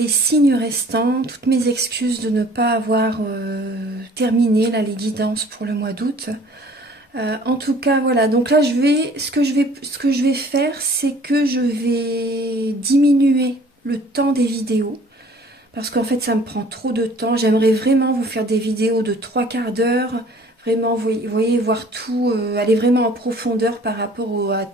signes restants, toutes mes excuses de ne pas avoir terminé là, les guidances pour le mois d'août. En tout cas, voilà. Donc là, ce que je vais faire, c'est que je vais diminuer le temps des vidéos. Parce qu'en fait, ça me prend trop de temps. J'aimerais vraiment vous faire des vidéos de 3/4 d'heure. Vraiment, vous voyez, voir tout, aller vraiment en profondeur par rapport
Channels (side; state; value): both; normal; correlation 0.52